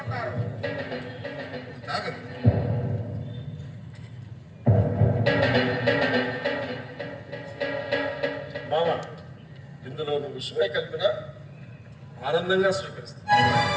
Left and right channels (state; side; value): identical; both; correlation 1.00